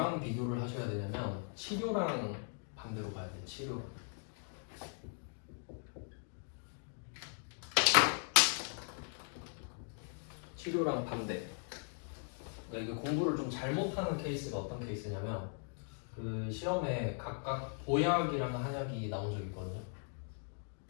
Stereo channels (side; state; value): right; silent; 52 dB below the other